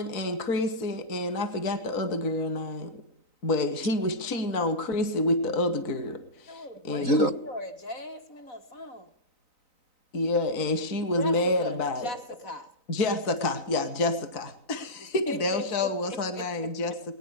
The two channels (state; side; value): late; right; 3.9 ms